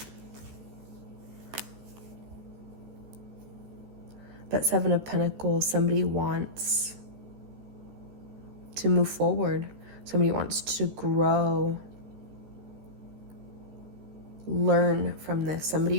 But 7 of Pentacles, somebody wants to move forward. Somebody wants to grow, learn from this.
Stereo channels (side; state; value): left; late; 14 ms